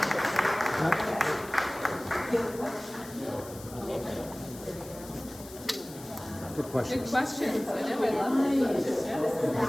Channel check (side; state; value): left; noise; hiss, 17 dB below the sound